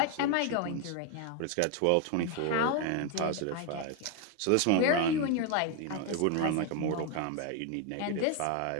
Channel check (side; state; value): both; different; correlation 0.01